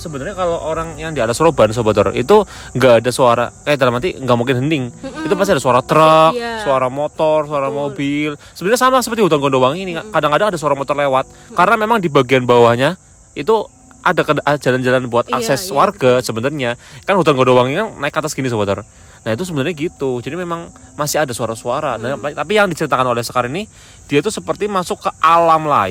sebenarnya kalau orang yang di alas Roban Sobat Horor itu nggak ada suara, dalam arti nggak mungkin hening. Itu pasti ada suara truk, Iya. suara motor, suara mobil. Sebenarnya sama seperti hutan Gondowangi ini, kadang-kadang ada suara motor lewat. Karena memang di bagian bawahnya itu ada jalan-jalan buat akses warga sebenarnya. Kan hutan Gondowangi kan naik ke atas gini Sobat Horor. Nah itu sebenarnya gitu. Jadi memang masih ada suara-suara. Nah, tapi yang diceritakan oleh Sekar ini, dia tuh seperti masuk ke alam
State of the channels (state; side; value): identical; both; correlation 1.00